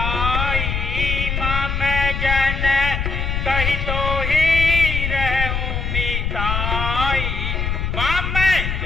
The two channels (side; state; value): left; noise; rumble, 1 dB below the sound